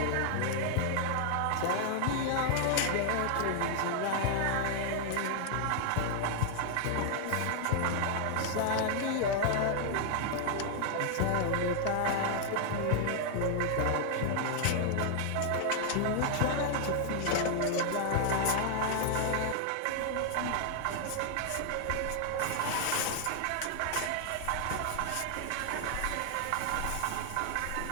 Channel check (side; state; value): both; different; correlation 0.00